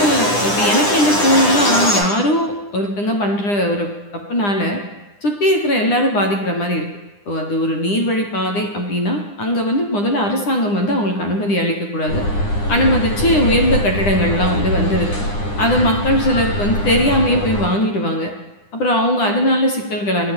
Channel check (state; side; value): late; right; 9.9 ms